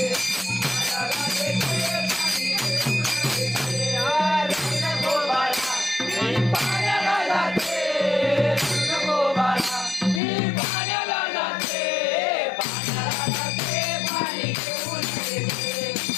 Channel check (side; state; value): right; drops out; at 10.2 s